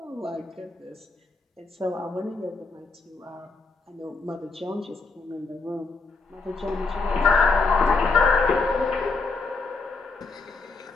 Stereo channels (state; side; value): quieter; right; 4.0 dB